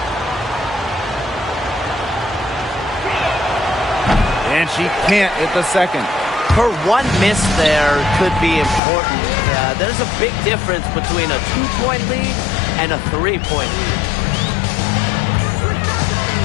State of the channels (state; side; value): drops out; right; at 8.8 s